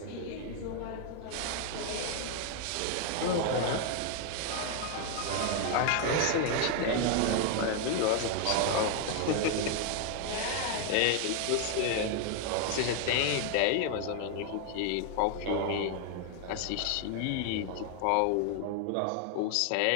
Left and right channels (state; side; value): different; both; correlation 0.00